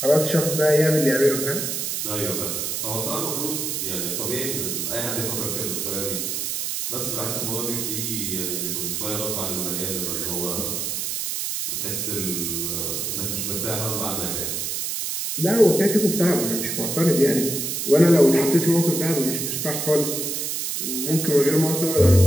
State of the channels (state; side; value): noise; right; hiss, 2 dB below the sound